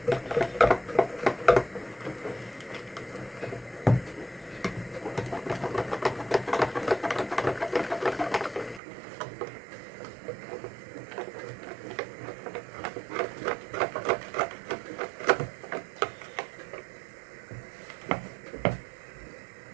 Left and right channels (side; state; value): left; drops out; at 8.8 s